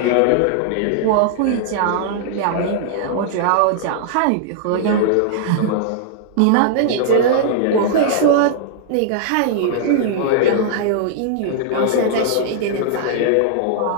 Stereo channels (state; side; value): different; both; correlation -0.01